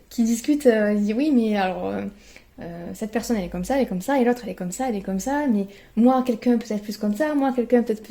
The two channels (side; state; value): both; identical; correlation 1.00